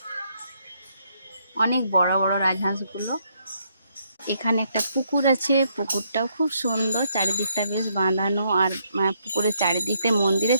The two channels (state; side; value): inverted; both; correlation -0.73